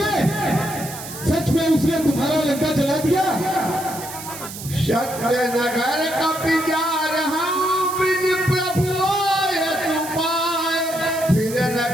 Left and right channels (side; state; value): right; noise; hiss, 11 dB below the sound